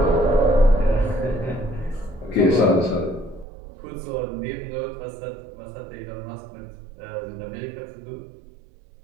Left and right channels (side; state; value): left; drops out; at 3.5 s